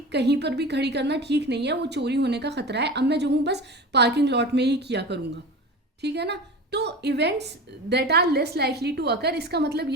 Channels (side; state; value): both; normal; correlation 0.31